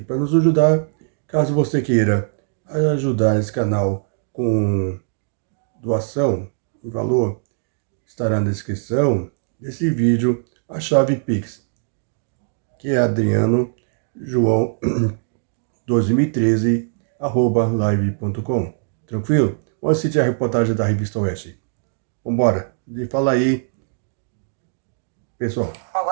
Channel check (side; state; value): left; silent; digital silence